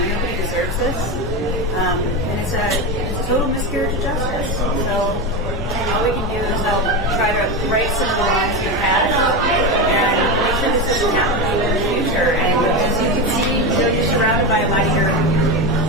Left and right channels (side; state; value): both; normal; correlation 0.17